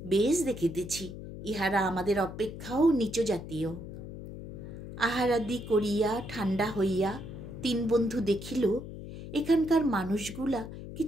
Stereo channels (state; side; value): noise; left; hum, 11 dB below the sound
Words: বেশ দেখিতেছি, ইহারা আমাদের অপেক্ষাও নিচ জাতীয়। আহারাদি করিয়া ঠান্ডা হইয়া 3 বন্ধু দেখিল এখানকার মানুষগুলা